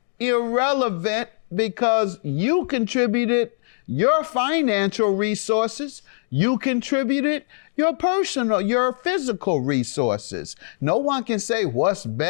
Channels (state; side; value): silent; right; digital silence